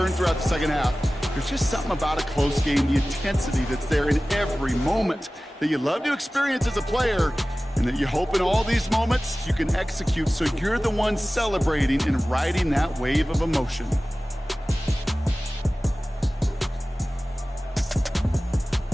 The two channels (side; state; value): both; normal; correlation 0.97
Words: throughout the second half. There's just something about a close game, the intensity that's there in every moment that you love to experience as a player, and that you hope in all these moments you can execute so you're the one celebrating and riding that wave of emotion.